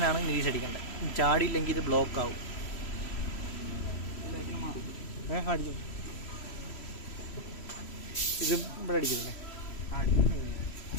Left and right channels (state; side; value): late; right; 3.1 ms